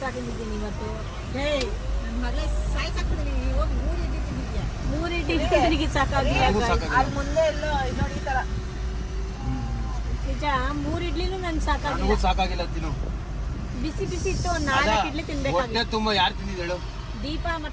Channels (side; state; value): both; identical; correlation 1.00